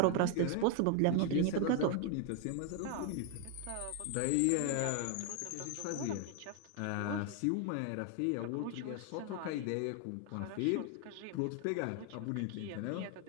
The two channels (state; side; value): different; both; correlation 0.01